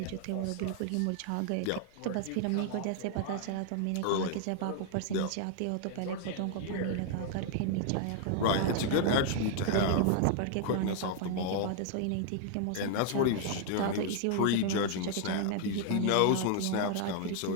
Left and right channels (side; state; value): both; different; correlation 0.00